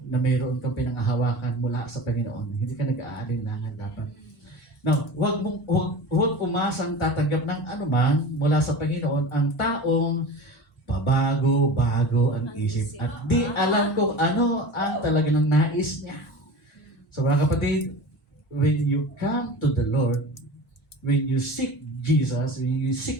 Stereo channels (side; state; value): both; normal; correlation 0.34